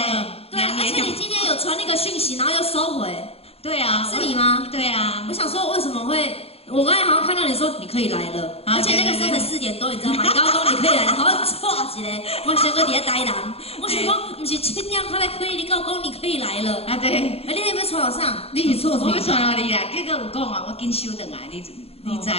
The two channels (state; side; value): late; right; 0.29 ms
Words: 对，而且你今天有传那个讯息，然后又收回。对啊，是你吗？对啊，我想说为什么会？我刚才好像看到你说你可以来了，而且那个时候才4点多，你知道吗？你刚刚说你可以来，好像错一个，我想说你在台南，我想讲不是7点才来可以，你跟我讲你可以来了。啊对，你有没有传到上？你是错，我要传到你啦，结果有讲啊，我紧收回来，你知无？